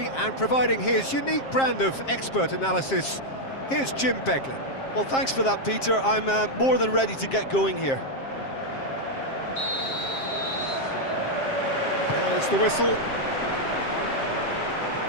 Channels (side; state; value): right; late; 7.5 ms